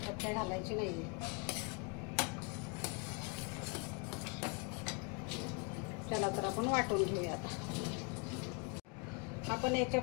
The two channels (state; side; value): quieter; right; 33.3 dB